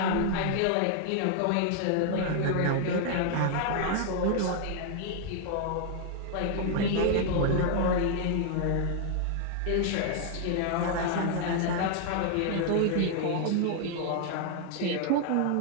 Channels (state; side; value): different; both; correlation 0.00